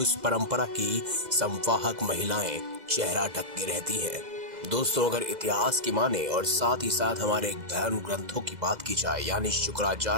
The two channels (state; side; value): late; left; 2.0 ms